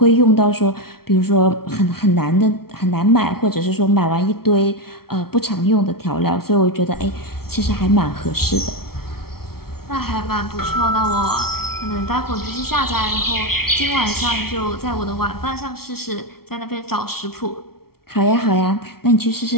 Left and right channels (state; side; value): late; right; 0.94 ms